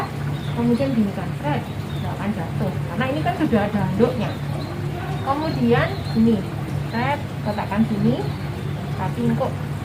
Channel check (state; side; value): identical; both; correlation 1.00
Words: kemudian ginikan, set, nggak akan jatuh. Karena ini kan sudah ada handuknya. Kemudian ini, set, letakkan sini. Tapi kok